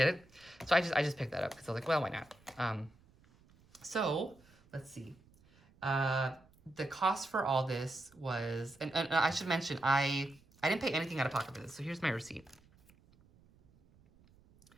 it. So I just picked that up because I was like, well, why not? So let's see. The cost for all this was, and I should mention, I didn't pay anything out of pocket for this, so here's my receipt.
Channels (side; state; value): right; noise; rumble, 29 dB below the sound